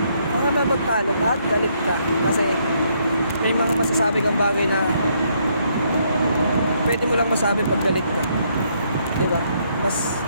kang magtalo ka, galit ka. Kasi may mga masasabi kang bagay na pwede mo lang masabi pag galit ka. Diba? Mas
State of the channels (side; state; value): both; inverted; correlation -0.72